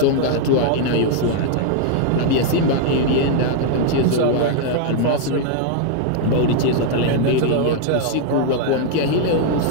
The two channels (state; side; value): different; both; correlation 0.00